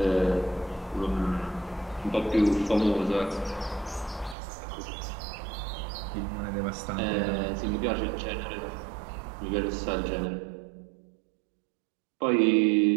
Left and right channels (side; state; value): left; drops out; at 4.4 s